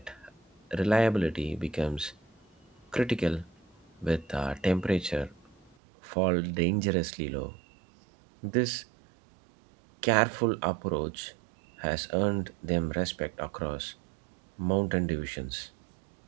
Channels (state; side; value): drops out; left; at 5.8 s